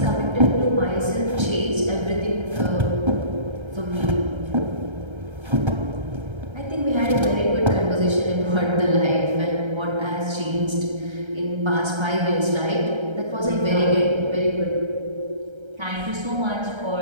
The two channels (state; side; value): late; left; 1.3 ms